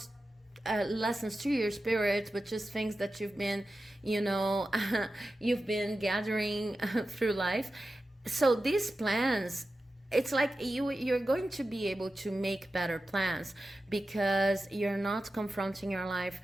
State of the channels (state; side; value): normal; both; correlation 0.93